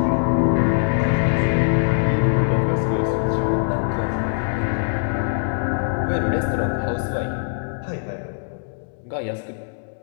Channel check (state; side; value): silent; right; digital silence